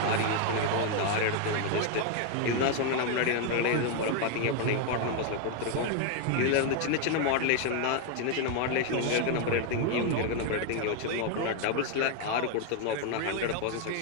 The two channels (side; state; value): both; different; correlation 0.00